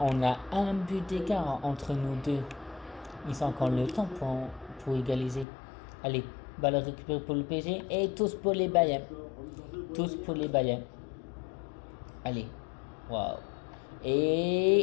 a un but d'écart entre nous deux. Ils ont encore le temps pour égaliser. Allez, balle récupérée pour le PSG et tous pour les Bayern. Tous pour les Bayern. Allez. Waouh.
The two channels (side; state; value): right; drops out; at 5.5 s